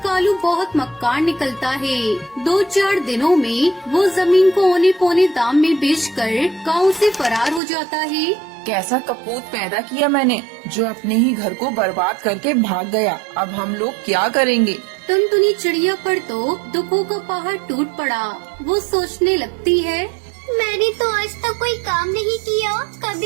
कालू बहुत मक्कार निकलता है। 2-4 दिनों में वो जमीन को औने पौने दाम में बेचकर गांव से फरार हो जाता है। कैसा कपूत पैदा किया मैंने, जो अपने ही घर को बर्बाद करके भाग गया। अब हम लोग क्या करेंगे? टुनटुनी चिड़िया पर तो दुखों का पहाड़ टूट पड़ा। वो सोचने लगती है, मैंने तो आज तक कोई काम नहीं किया,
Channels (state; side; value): drops out; left; at 7.6 s